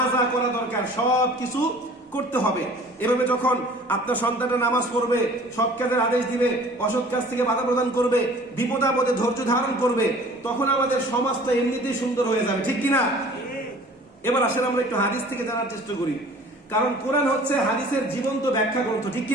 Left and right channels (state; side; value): normal; both; correlation 0.48